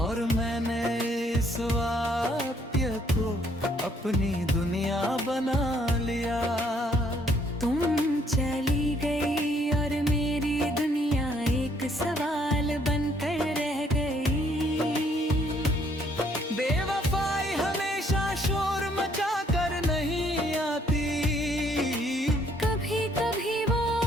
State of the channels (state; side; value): normal; both; correlation 0.66